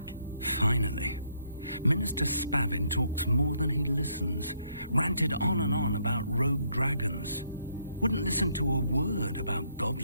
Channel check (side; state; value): both; inverted; correlation -0.72